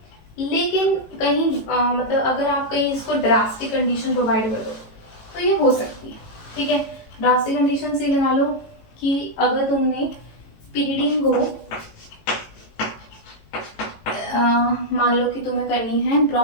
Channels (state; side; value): late; right; 18 ms